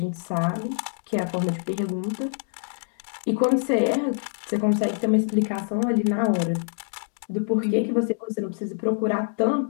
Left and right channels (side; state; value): right; silent; digital silence